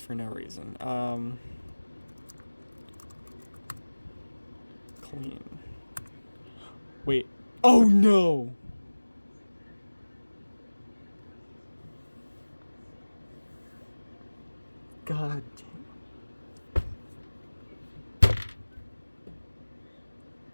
no reason. Clean. Wait. Oh no! God damn.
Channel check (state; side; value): inverted; both; correlation -1.00